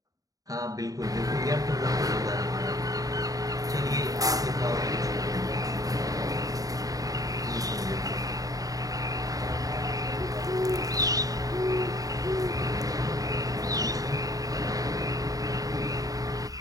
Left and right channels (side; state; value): left; late; 0.17 ms